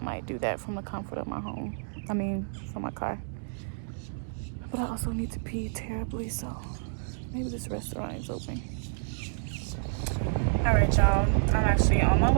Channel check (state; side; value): silent; left; digital silence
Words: might do that from the comfort of my home. From my car. But I also need to pee terribly, so maybe this restaurant is open. Alright, y'all. I'm actually on my